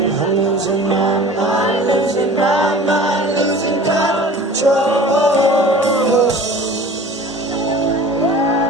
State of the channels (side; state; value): both; normal; correlation 0.42